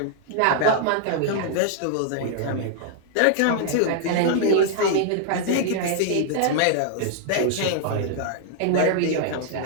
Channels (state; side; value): different; both; correlation -0.01